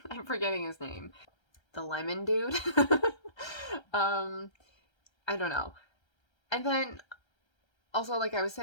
I'm forgetting his name. The lemon dude. I don't know. And then also, like I was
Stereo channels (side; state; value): right; late; 1.3 ms